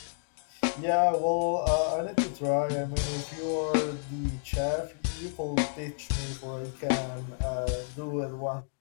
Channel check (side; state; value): right; silent; digital silence